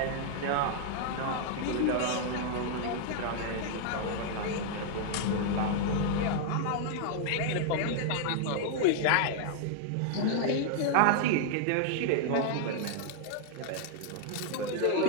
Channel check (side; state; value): both; different; correlation -0.01